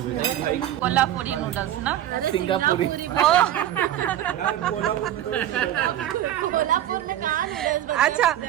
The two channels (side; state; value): left; quieter; 12.1 dB